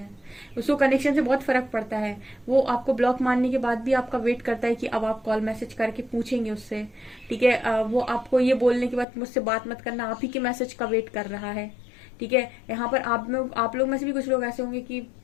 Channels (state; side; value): drops out; right; at 9.1 s